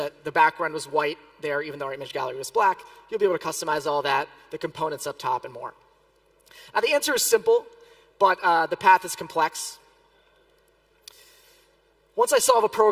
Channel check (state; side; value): identical; both; correlation 1.00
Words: the background was white there, even though our image gallery was black. You'll be able to customize all that, the components up top, and more. Now, the answer is simple, but the path is complex. Once I solve a